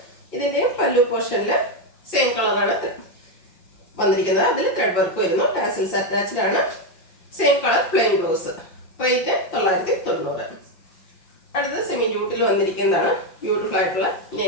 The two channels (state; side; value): late; right; 5.7 ms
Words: ഇതിൻ്റെയും പല്ലു പോർഷനിൽ സെയിം കളറാണ് വന്നിരിക്കുന്നത്. അതിൽ ത്രെഡ് വർക്ക് വരുന്നു. ടാസൽസ് അറ്റാച്ച്ഡ് ആണ്. Same colour plain blouse. Rate 990. അടുത്തത് സെമി ജൂട്ടിൽ വന്നിരിക്കുന്നതാണ്. ബ്യൂട്ടിഫുൾ ആയിട്ടുള്ള